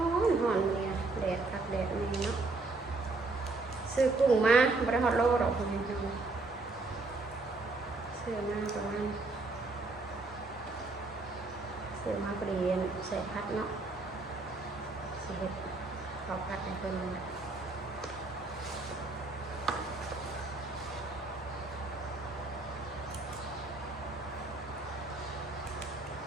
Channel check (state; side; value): quieter; left; 3.4 dB